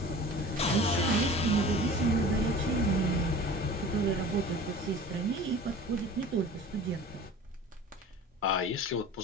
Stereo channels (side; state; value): both; normal; correlation 0.41